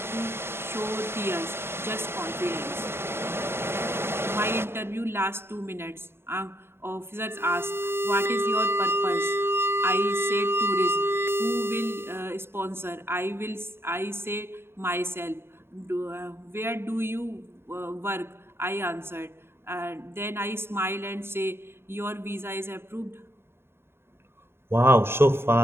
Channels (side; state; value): left; late; 0.11 ms